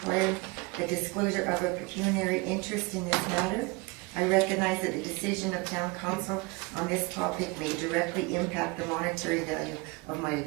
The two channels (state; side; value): quieter; left; 26.0 dB